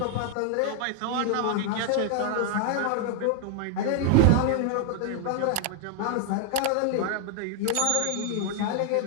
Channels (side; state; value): both; different; correlation 0.00